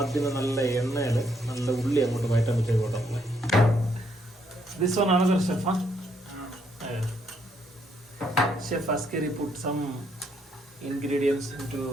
നല്ല എണ്ണയിൽ നല്ല ഉള്ളി അങ്ങോട്ട് വയറ്റാൻ വെച്ചേക്കോട്ടെ. ദിസ് വൺ ആണ് chef. Chef Askari put some ingredients into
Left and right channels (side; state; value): both; normal; correlation 0.73